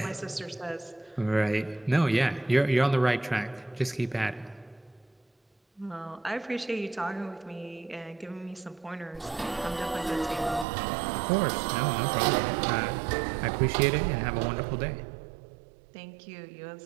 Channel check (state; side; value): drops out; left; at 10.7 s